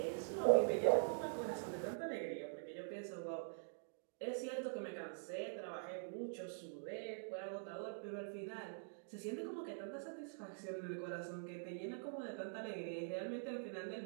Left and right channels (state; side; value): silent; left; digital silence